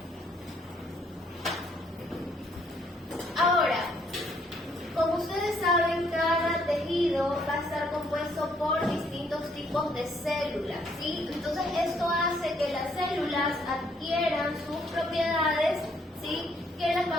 Ahora, como ustedes saben, cada tejido va a estar compuesto por distintos tipos de células, ¿sí? Entonces esto hace que las células adquieran sus propiedades, ¿sí? Que las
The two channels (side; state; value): both; normal; correlation 0.68